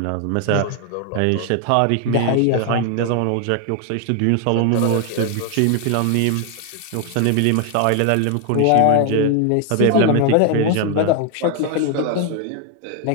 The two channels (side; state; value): both; different; correlation 0.00